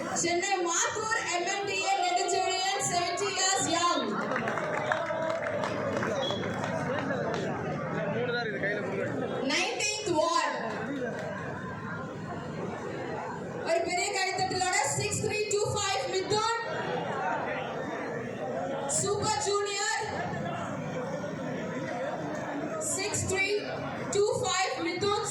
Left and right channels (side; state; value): both; identical; correlation 1.00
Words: Chennai Mathur MMDA Nedichurian, 70 years young. 19th ward. ஒரு பெரிய கைத்தட்டலோட 6325 Mithun super junior 6325 Mithun